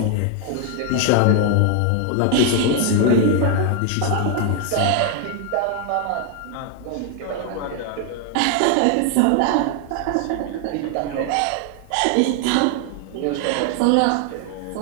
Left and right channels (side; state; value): both; different; correlation 0.01